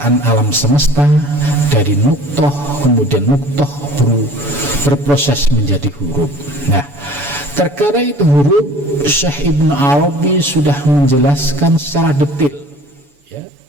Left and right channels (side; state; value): left; late; 7.0 ms